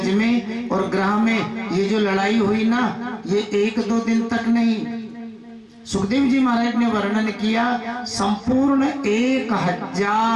में और ग्रह में ये जो लड़ाई हुई ना, ये 1-2 दिन तक नहीं। सुखदेव जी महाराज ने वर्णन किया, संपूर्ण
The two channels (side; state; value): both; identical; correlation 1.00